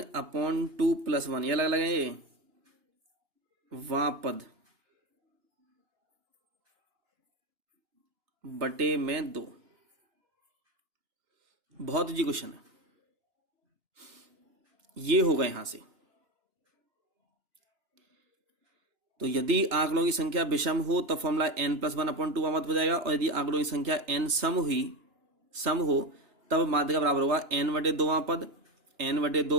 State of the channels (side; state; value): left; late; 3.2 ms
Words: + 1, ये अलग अलग है, ये वां पद बटे में 2। बहुत इजी क्वेश्चन है, ये होगा यहां से। तो यदि आंकड़ों की संख्या विषम हो तो फॉर्मूला n+1/2 वां पद हो जाएगा, और यदि आंकड़ों की संख्या n सम हो तब माध्यिका बराबर होगा n/2 वां पद,